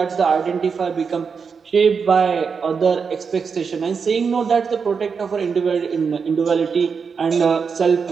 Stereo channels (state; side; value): quieter; left; 5.7 dB